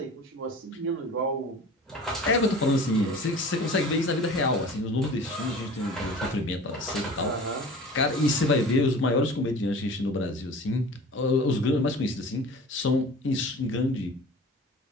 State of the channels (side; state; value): both; normal; correlation 0.41